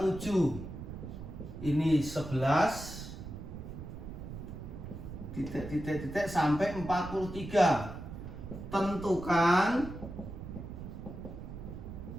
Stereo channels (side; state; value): right; noise; rumble, 10 dB below the sound